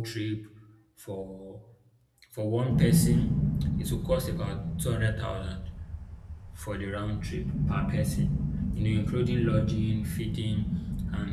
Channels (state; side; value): identical; both; correlation 1.00